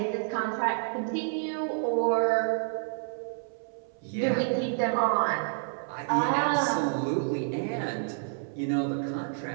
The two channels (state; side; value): silent; left; 58 dB below the other